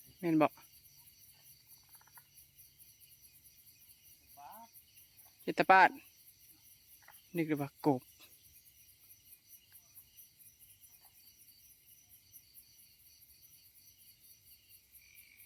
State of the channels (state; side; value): identical; both; correlation 1.00